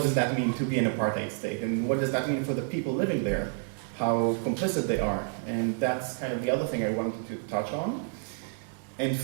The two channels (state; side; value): silent; left; 58 dB below the other